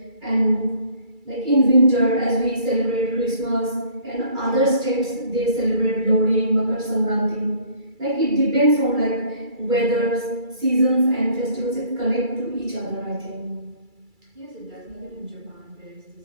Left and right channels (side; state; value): left; late; 2.3 ms